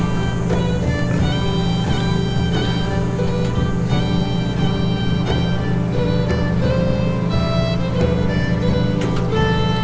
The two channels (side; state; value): both; identical; correlation 1.00